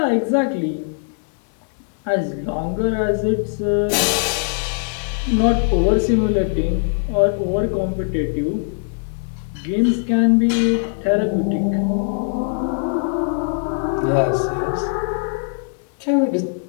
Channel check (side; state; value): right; silent; 65 dB below the other